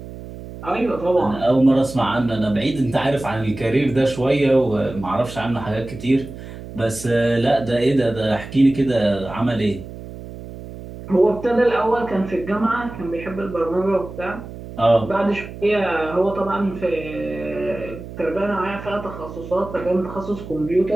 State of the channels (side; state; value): right; noise; hum, 13 dB below the sound